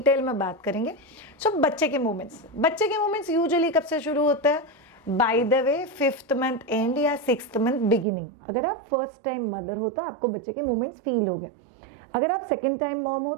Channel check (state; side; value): drops out; left; at 8.1 s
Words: में बात करेंगे। सो बच्चे के मोमेंट्स यूजुअली कब से शुरू होता है? By the way 5th month and या 6th मंथ बिगिनिंग। अगर आप फर्स्ट टाइम मदर हो तो आपको बच्चे के मोमेंट्स फील हो गए। अगर आप सेकेंड टाइम मॉम हो